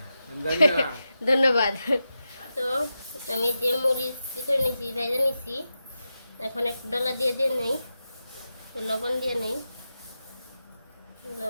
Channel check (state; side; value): inverted; both; correlation -0.90